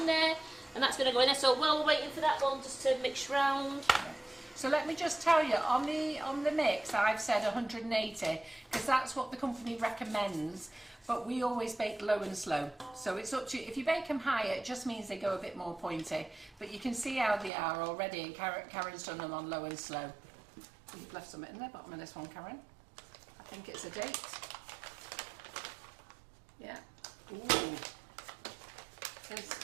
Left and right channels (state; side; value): drops out; left; at 17.5 s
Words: there, and that's going to go in there. So while we're waiting for that one just to mix round. So let me just tell you, on the mix, I've said 180 because that's what the company recommends. But we always bake low and slow, so it's up to you. If you bake them higher, it just means they go a bit more pointy. But you can see how they are already, and Karen's done them on low and slow. You've left some in the bottom of this one, Karen. I think it's a date. Yeah. Ooh.